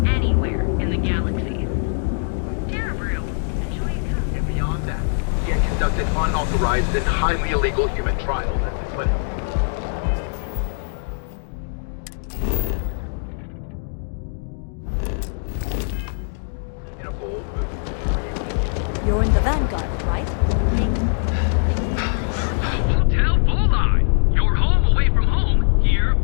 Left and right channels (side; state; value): right; silent; 64 dB below the other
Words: Anywhere in the galaxy. And beyond that, you can't conduct an unauthorized and highly illegal human trial. But you're in the Vanguard, right? Hotel Bullseye! Your home away from home, here